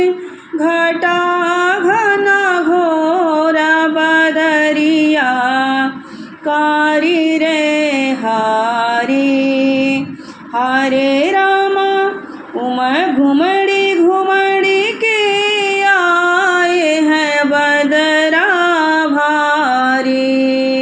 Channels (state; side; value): identical; both; correlation 1.00